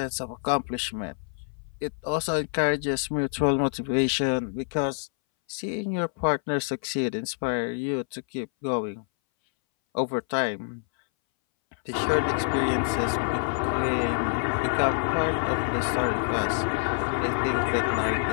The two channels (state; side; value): silent; right; 60 dB below the other